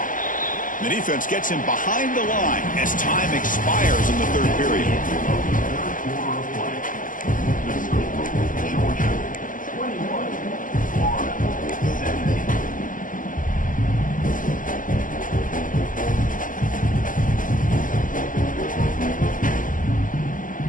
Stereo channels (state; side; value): late; right; 0.38 ms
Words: The defense gets him behind the line as time expires in the third period.